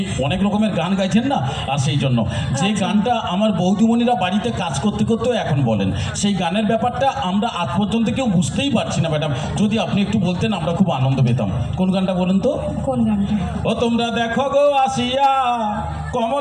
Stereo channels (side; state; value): both; identical; correlation 1.00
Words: অনেক রকমের গান গাইছেন না, আর সেই জন্য যে গানটা আমার বৌদিমণিরা বাড়িতে কাজ করতে করতেও এখন বলেন, সেই গানের ব্যাপারটা আমরা আজ পর্যন্ত কেউ বুঝতেই পারছি না ম্যাডাম। যদি আপনি একটু বলতেন আমরা খুব আনন্দ পেতাম। কোন গানটা বলুন তো? কোন গানটা? ও তোমরা দেখো গো আসিয়া